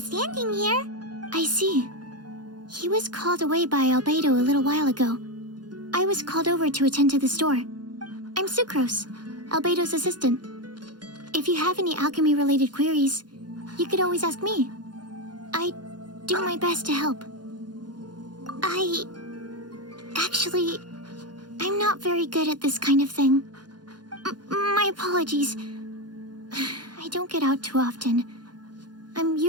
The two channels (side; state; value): left; late; 0.70 ms